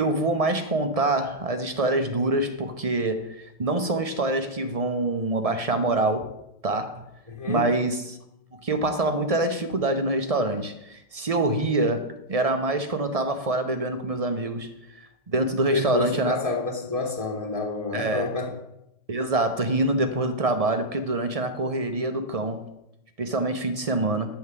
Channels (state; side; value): late; left; 1.7 ms